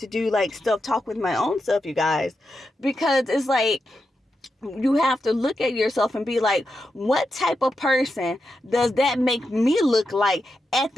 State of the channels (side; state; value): both; normal; correlation 0.87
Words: do like self-talk with my own self, you guys, because it's like, you have to look at yourself and be like, what type of person does that make me look like at